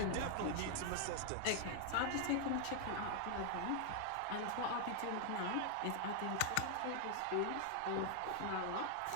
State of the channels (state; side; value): different; both; correlation 0.00